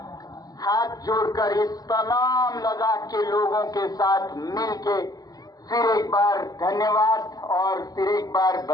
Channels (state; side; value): late; right; 0.18 ms